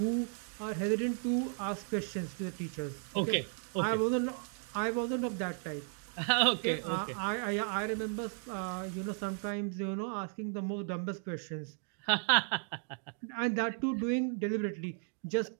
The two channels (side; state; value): left; silent; 54 dB below the other